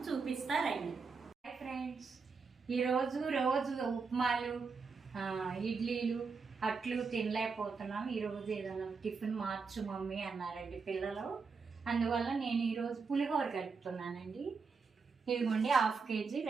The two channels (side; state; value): left; quieter; 4.9 dB